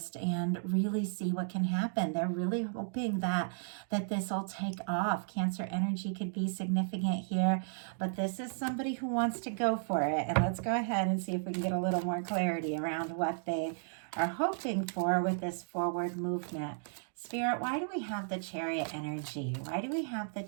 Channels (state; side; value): silent; left; digital silence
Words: and really see what can happen. They're really hoping that this will take off. Cancer energy could be significant here, but this is somebody who wants to go for it. And let's go ahead and see if we can get a little more clarity around what they are hoping for with this forward movement. Spirit, why do we have the Chariot energy? Why do we have the